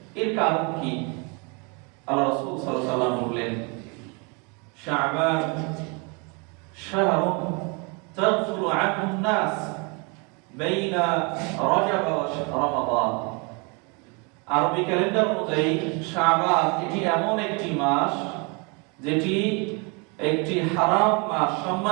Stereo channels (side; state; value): left; quieter; 32.0 dB